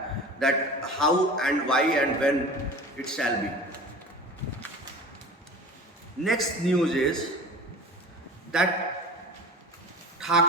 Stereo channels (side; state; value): both; normal; correlation 0.37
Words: that how and why and when it shall be. Next news is that